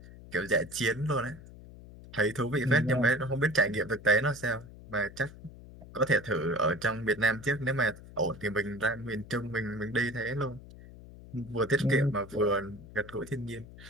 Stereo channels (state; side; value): noise; left; hum, 17 dB below the sound